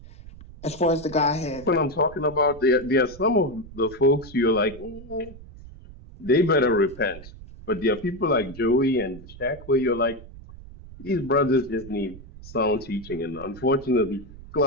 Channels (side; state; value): right; noise; rumble, 17 dB below the sound